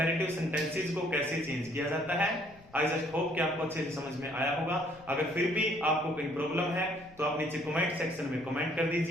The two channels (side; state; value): left; noise; rumble, 24 dB below the sound